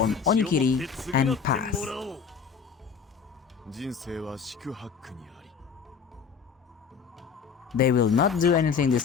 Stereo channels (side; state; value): right; quieter; 6.5 dB